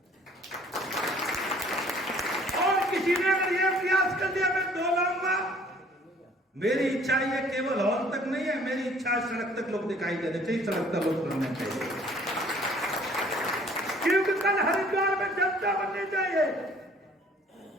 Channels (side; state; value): both; normal; correlation 0.56